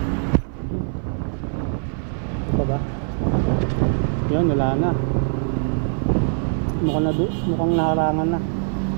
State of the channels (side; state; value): left; silent; 56 dB below the other